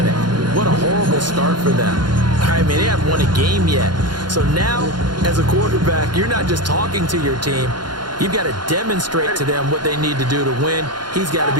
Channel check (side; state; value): left; late; 0.71 ms